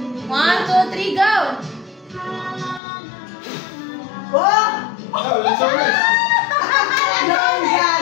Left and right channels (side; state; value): right; drops out; at 2.8 s